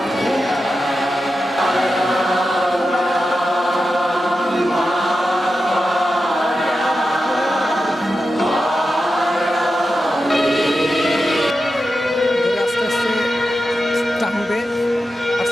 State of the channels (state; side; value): normal; both; correlation 0.90